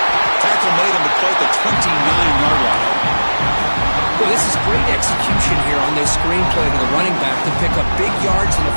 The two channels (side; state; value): both; inverted; correlation -1.00